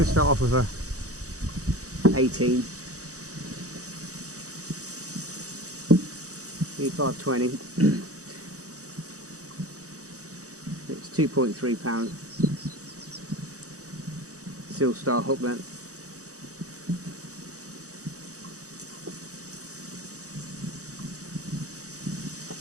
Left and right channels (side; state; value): left; late; 0.66 ms